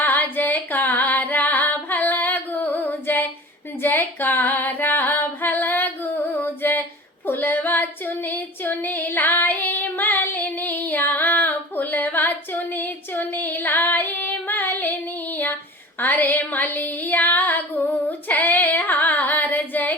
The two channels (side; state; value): both; normal; correlation 0.38